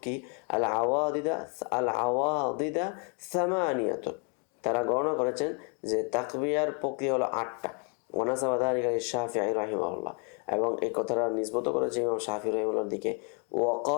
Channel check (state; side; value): quieter; right; 37.5 dB